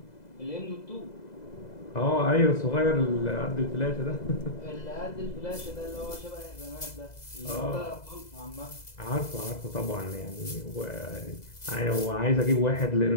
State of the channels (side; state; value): right; late; 2.0 ms